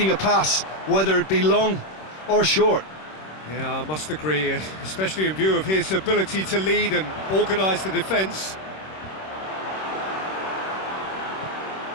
a pass, whether it be long or short. Yeah, I must agree, especially in view of his ability to lead and organise the defence.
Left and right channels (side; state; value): right; late; 26 ms